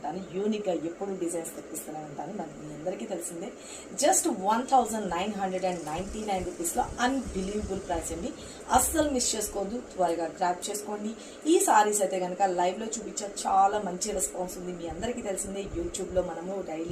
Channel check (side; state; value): both; identical; correlation 1.00